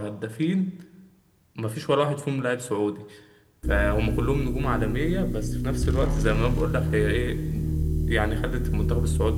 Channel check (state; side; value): identical; both; correlation 1.00